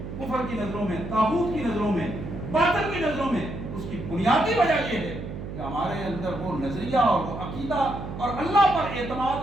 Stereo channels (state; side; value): noise; right; hum, 8 dB below the sound